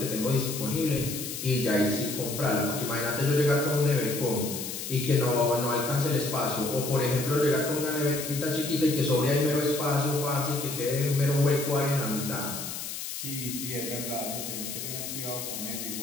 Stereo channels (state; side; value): noise; left; hiss, 6 dB below the sound